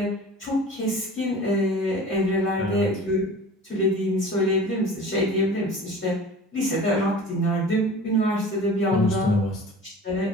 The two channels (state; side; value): normal; both; correlation 0.40